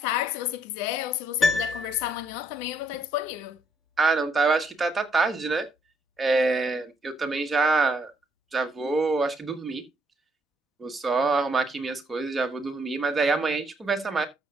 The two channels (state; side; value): normal; both; correlation 0.71